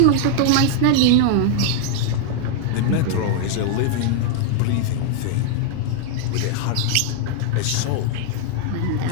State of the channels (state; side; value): different; both; correlation -0.01